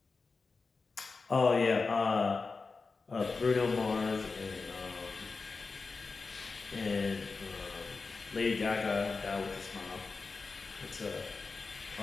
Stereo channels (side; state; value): right; quieter; 4.2 dB